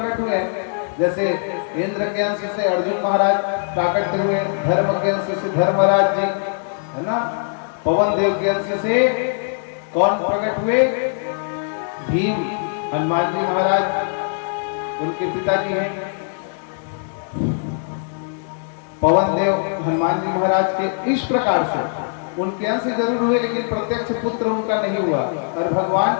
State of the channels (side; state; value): right; silent; digital silence